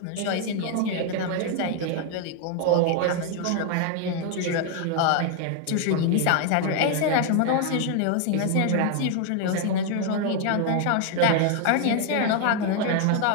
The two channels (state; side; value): different; both; correlation 0.00